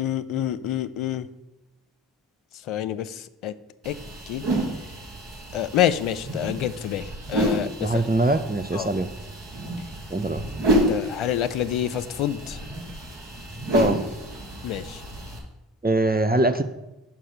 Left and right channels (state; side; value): normal; both; correlation 0.36